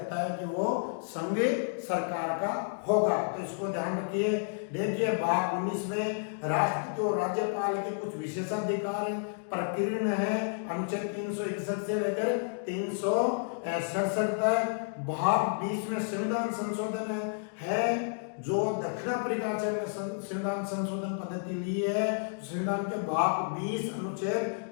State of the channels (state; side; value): silent; right; digital silence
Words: है कि वो संघ सरकार का होगा। तो इसको ध्यान रखिए। देखिए भाग 19 में राष्ट्रपति और राज्यपाल के कुछ विशेषाधिकार प्रकीर्ण है अनुच्छेद 361 से लेकर 367 तक। भाग 20 में संविधान संशोधन है जो दक्षिण अफ्रीका में संविधान संशोधन पद्धति ली है। संविधान के भाग 20 अनुच्छेद